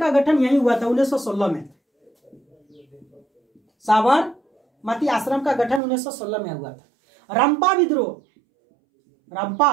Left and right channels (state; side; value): drops out; left; at 5.8 s